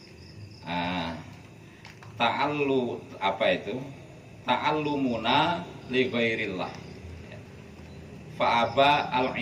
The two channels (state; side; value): identical; both; correlation 1.00